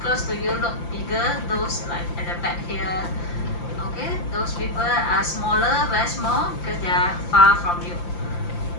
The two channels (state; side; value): late; right; 5.8 ms